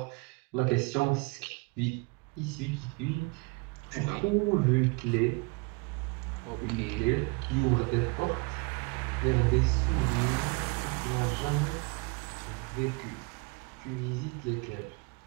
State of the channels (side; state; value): left; quieter; 30.2 dB